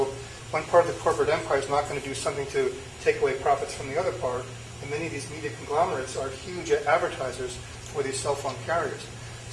one part of the corporate empire is not going to do something to take away profits from the other part, and many of these media conglomerates are huge advertisers for these cell phone carriers.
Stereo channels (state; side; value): identical; both; correlation 1.00